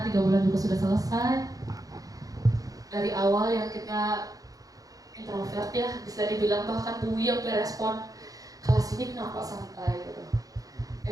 3 bulan juga sudah selesai. Dari awal yang kita introvert ya, bisa dibilang bahkan Bu yang berespon kelas ini kenapa santai gitu.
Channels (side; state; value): left; late; 0.17 ms